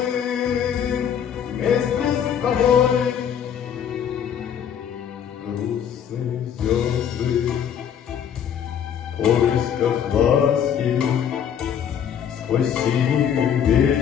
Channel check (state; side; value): quieter; right; 8.5 dB